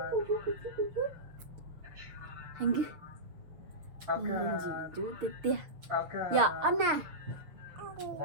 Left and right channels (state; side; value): late; left; 6.6 ms